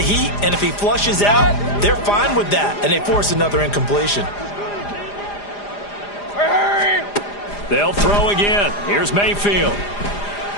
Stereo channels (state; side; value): late; right; 4.9 ms